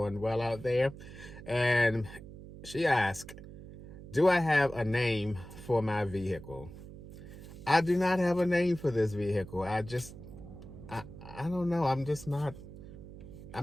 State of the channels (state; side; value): noise; right; hum, 15 dB below the sound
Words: well out there. And she asked, do I have a name for my vehicle? I do not have a name for this vehicle. I don't know. I'm